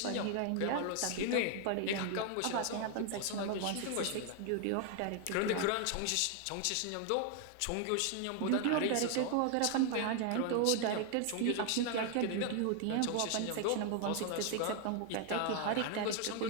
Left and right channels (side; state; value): both; different; correlation 0.00